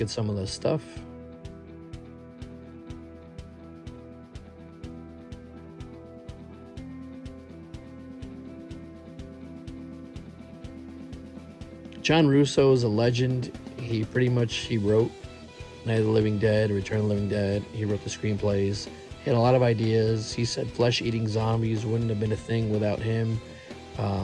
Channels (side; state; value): both; identical; correlation 1.00